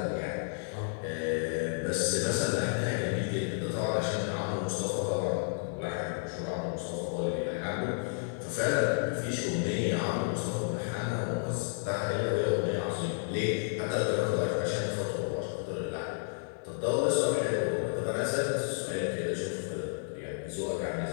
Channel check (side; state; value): right; silent; digital silence